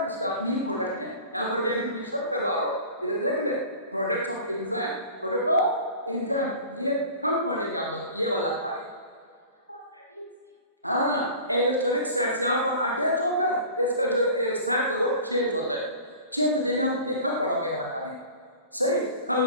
इसका अपनी प्रोडक्ट ने। यहाँ पर भी मेंशन करवा रहा हूँ, इधर देख ले, products of enzyme, product of enzyme, ये कम पढ़ेंगे आप लोग, ये वाला खाली। हाँ, एलोस्टेरिक साइट से यहाँ पर अटैच होकर इसका जो साइट है वो चेंज होता है, चेंज होते हैं, आप ये कब पढ़ोगे वाला खाली। सही, कल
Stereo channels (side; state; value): both; inverted; correlation -0.40